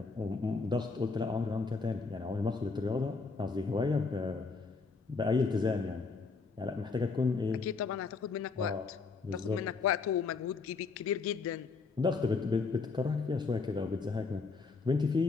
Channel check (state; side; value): quieter; right; 4.5 dB